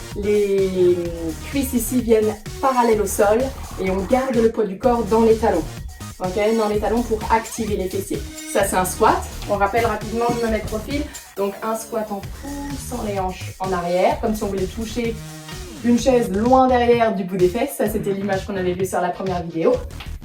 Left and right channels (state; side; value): identical; both; correlation 1.00